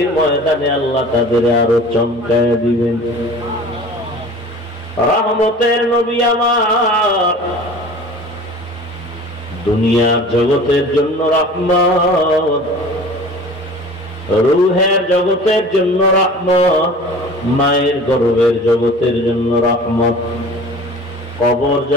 ময়দানে আল্লাহ তাদের আরো চমকায় দিবেন। রহমতের নবী আমার, দুনিয়ার জগতের জন্য রহমত, রূহের জগতের জন্য রহমত, মায়ের গর্ভের জগতের জন্য রহমত, কবর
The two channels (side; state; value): both; normal; correlation 0.41